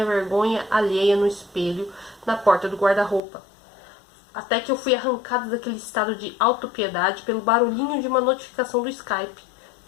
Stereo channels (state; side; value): drops out; right; at 3.2 s